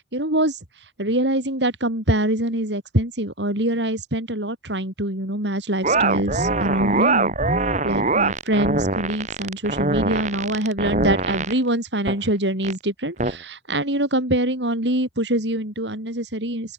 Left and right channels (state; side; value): normal; both; correlation 0.16